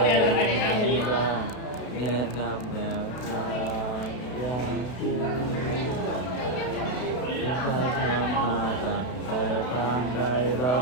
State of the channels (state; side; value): late; right; 32 ms